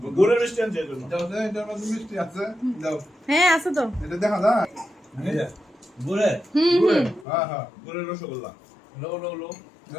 গুড়ের মিষ্টি আনছে এই জন্য। মিষ্টি আছে, দাও। হ্যাঁ আছে তো। এটা দেখা যায়। এই যে, ঘুরে হ্যাঁ হ্যাঁ, গুড়ের রসগোল্লা। লো লো লো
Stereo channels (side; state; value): right; drops out; at 7.2 s